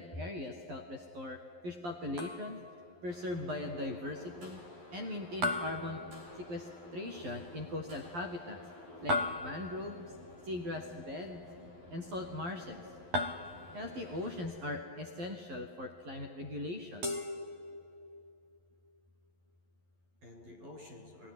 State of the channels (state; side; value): late; left; 11 ms